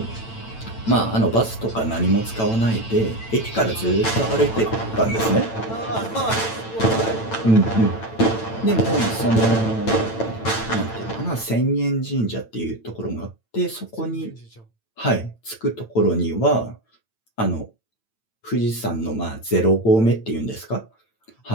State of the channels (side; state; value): right; late; 9.0 ms